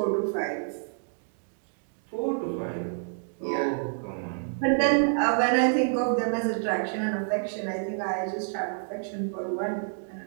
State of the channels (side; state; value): left; silent; digital silence